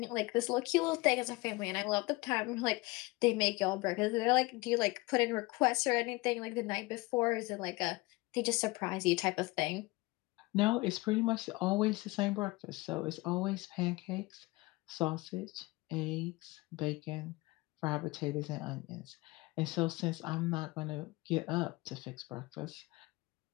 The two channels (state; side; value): quieter; right; 22.7 dB